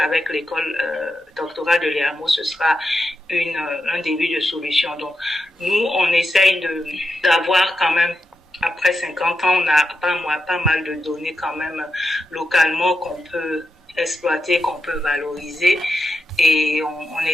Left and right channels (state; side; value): normal; both; correlation 0.87